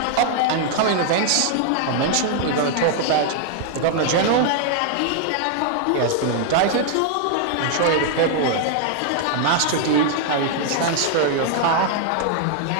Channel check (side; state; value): both; different; correlation 0.00